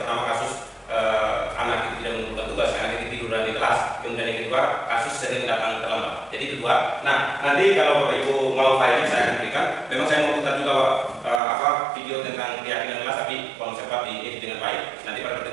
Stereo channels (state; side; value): drops out; left; at 11.4 s